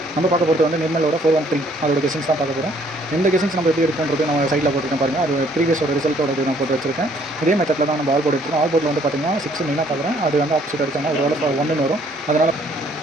நம்ம பார்க்க போகிறது வந்து நிர்மலோட 413 அதோட கெஸிங்ஸ் தான் பார்க்க போகிறோம். எந்த கெஸிங்ஸ் நம்ம எப்படி எடுக்கணுன்றது நம்ம சைடில் போட்டுருக்கேன் பாருங்கள். அது ப்ரீவியஸோட ரிசல்ட்டோட நான் போட்டு வச்சிருக்கேன். இதே மெத்தடில் தான் நம்ம ஆல் போர்டு எடுத்துருக்கோம். ஆல் போர்டில் வந்து பார்த்தீங்கன்னா 6 மெயினாக பார்க்குறேன். அது வந்து ஆப்போசிட் அடிச்சாங்கன்னா ஒரு வேலை 1 வரும். அதனால்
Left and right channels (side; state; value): both; normal; correlation 0.63